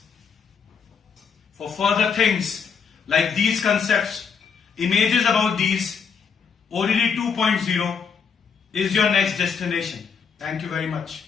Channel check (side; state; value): right; quieter; 6.2 dB